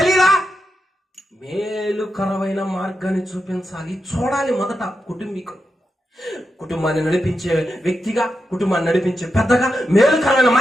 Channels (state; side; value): normal; both; correlation 0.87